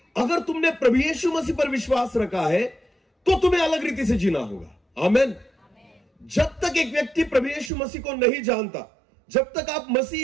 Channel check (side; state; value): left; drops out; at 7.7 s